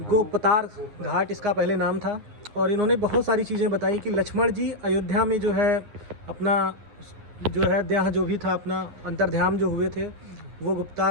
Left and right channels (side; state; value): left; late; 9.7 ms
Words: गोपतार घाट इसका पहले नाम था। और इन्होंने बहुत सारी चीज़ें बताई कि लक्ष्मण जी अयोध्या में जो है अपना जो है देह जो भी था, अपना अंतर्ध्यान जो हुए थे, वो